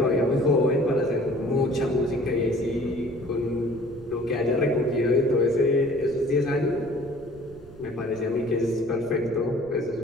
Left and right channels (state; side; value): noise; right; rumble, 20 dB below the sound